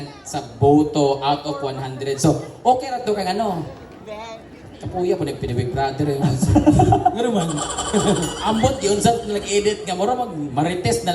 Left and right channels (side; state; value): both; identical; correlation 1.00